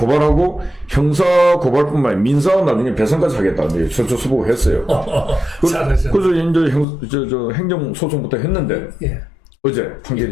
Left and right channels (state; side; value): drops out; right; at 6.9 s